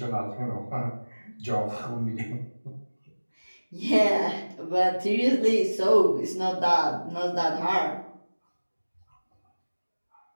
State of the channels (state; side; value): inverted; both; correlation -1.00